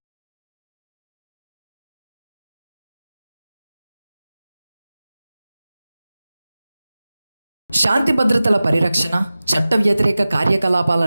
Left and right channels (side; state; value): both; inverted; correlation -0.96